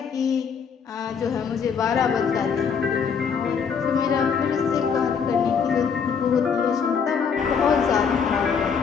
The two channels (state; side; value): quieter; right; 6.4 dB